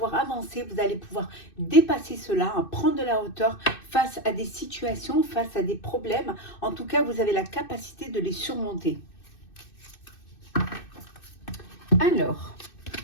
avancer, vous allez pouvoir dépasser cela, hein, prendre de la hauteur face à des situations, face à des problèmes. En tout cas, vous avez la capacité de les surmonter. Alors,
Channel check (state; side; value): late; right; 2.6 ms